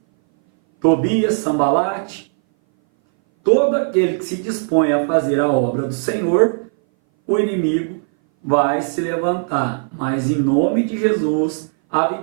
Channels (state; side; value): silent; left; 60 dB below the other